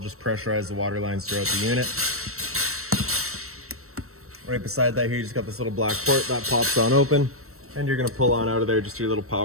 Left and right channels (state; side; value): late; left; 0.63 ms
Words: pressurize the water lines throughout the unit. Right beside that here, you just got this little black port that pops on open. And you're going to pull on out of there just your little